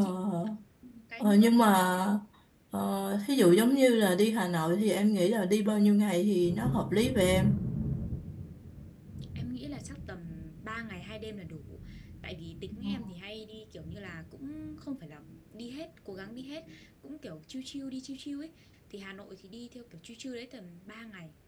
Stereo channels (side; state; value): both; identical; correlation 1.00